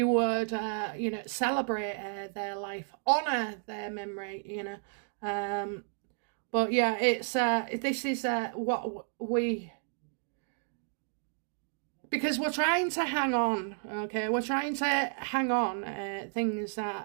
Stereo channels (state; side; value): silent; left; 56 dB below the other